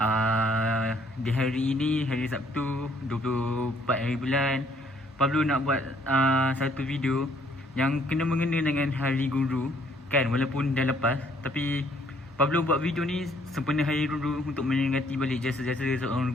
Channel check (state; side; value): normal; both; correlation 0.64